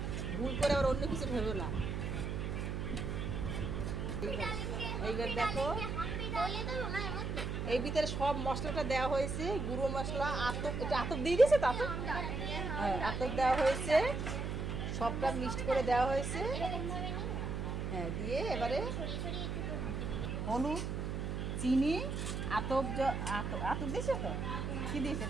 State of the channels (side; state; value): right; noise; hum, 2 dB below the sound